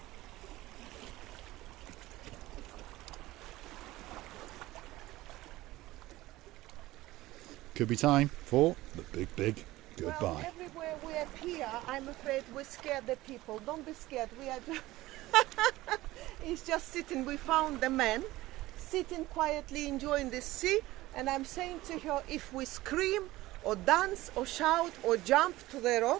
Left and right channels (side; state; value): left; quieter; 17.7 dB